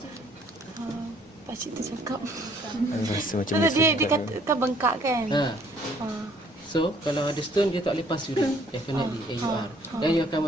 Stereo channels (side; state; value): both; normal; correlation 0.61